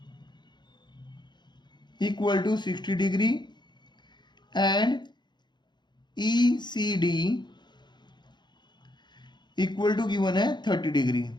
equal to 60 degree and E C D equal to given है 30 डिग्री।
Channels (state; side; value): late; right; 0.21 ms